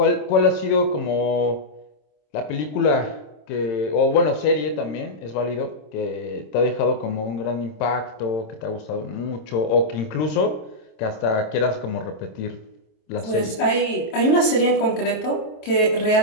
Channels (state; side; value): late; right; 26 ms